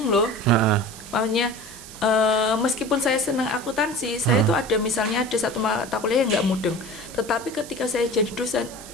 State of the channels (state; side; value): noise; right; hiss, 16 dB below the sound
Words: loh. Heeh. Makanya meskipun saya senang akuntansi, saya tuh ada misalnya ada satu mata kuliah yang nggak mudeng. Tetapi ketika saya jadi dosen,